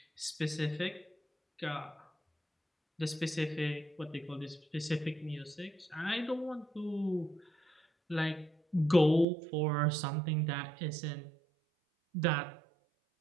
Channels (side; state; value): left; drops out; at 9.2 s